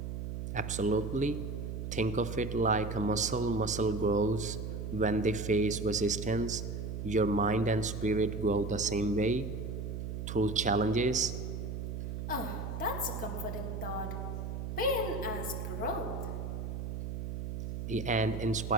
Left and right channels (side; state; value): right; noise; hum, 5 dB below the sound